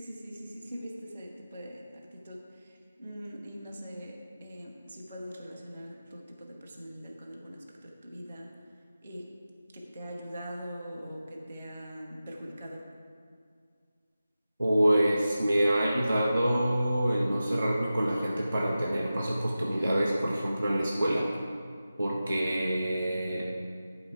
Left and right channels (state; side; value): inverted; both; correlation -0.94